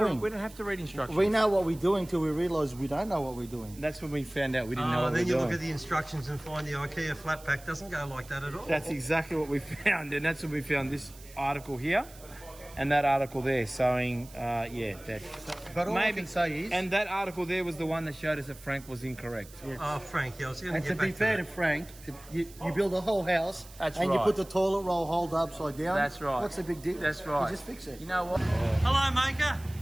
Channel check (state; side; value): noise; right; hiss, 20 dB below the sound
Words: doing. We don't have to read instructions. We know what we're doing till we realise we don't know what we're doing. That's when we found out we didn't know what we Then were you doing. look at the instructions and find the IKEA flat pack doesn't go like that at all. That's exactly what we found, and that's when we found this article here, and that article there showing, that. But all I can say is, And that article there was the one that showed us that Frank was incorrect. Oh, Frank, I was going to and get to back be fair to to Frank, you build a whole house That's and you right. put the toilet roll holder upside down. That's right. What's the big deal? That's right. You just fix it. You know what? Hello, Maker.